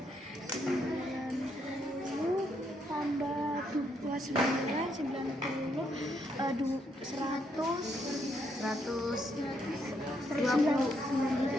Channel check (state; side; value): normal; both; correlation 0.76